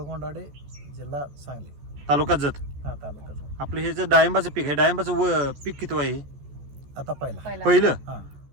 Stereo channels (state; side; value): late; left; 14 ms